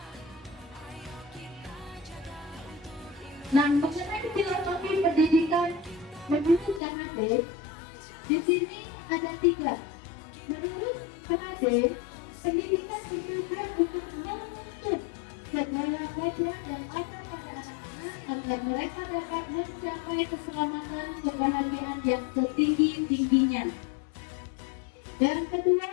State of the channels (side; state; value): right; drops out; at 6.8 s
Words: Nah, mengenai filosofi pendidikan menurut Kang Ade, di sini ada 3. Menurut Kang Ade, pendidikan bertujuan untuk menuntut segala kodrat dan ada pada anak-anak agar mereka dapat mencapai keselamatan kebahagiaan yang setinggi-tingginya. Yang kedua